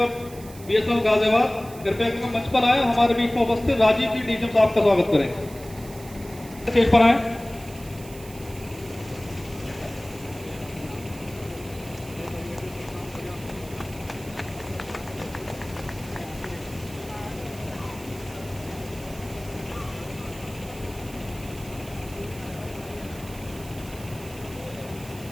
बीएसएनएल गाजियाबाद कृपया करके मंच पर आए और हमारे बीच में उपस्थित राजीव जी डीजीएम साहब का स्वागत करें। स्टेज पर आए।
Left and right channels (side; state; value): right; noise; hiss, 18 dB below the sound